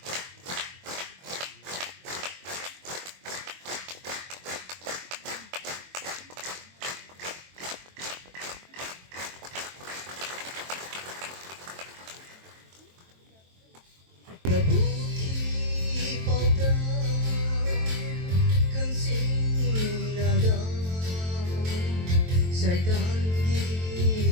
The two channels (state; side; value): late; left; 23 ms